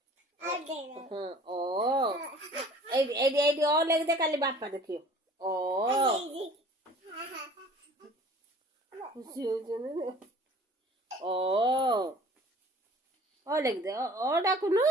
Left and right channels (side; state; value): both; normal; correlation 0.48